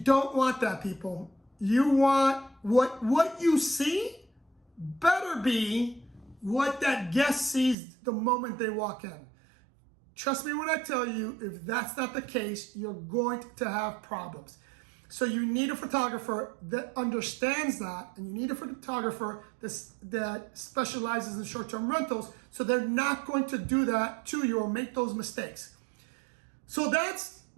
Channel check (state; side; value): drops out; left; at 7.8 s